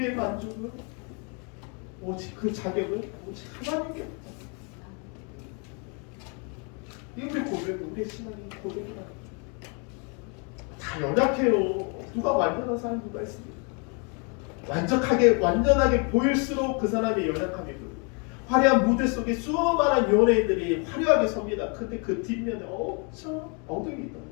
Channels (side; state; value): right; quieter; 35.8 dB